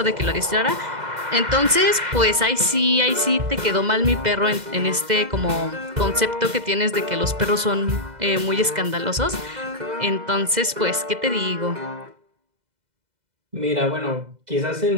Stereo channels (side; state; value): left; late; 2.0 ms